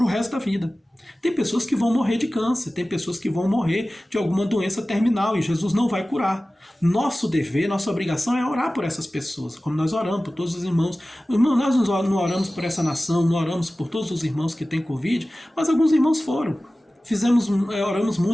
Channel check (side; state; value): both; normal; correlation 0.97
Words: o resto da vida. Tem pessoas que vão morrer de câncer, tem pessoas que vão morrer de alguma doença terminal e Jesus não vai curar. Nosso dever, nossa obrigação é orar por essas pessoas, como nós oramos por todos os irmãos. Irmão, nós não oramos por essa nação, não oramos por todos os irmãos que têm Covid, mas alguns irmãos foram. Oramos